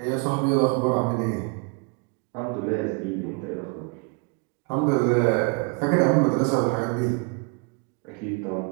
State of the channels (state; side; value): quieter; left; 32.1 dB